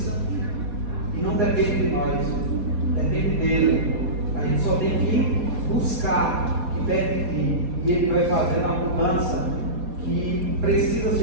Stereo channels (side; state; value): left; late; 4.2 ms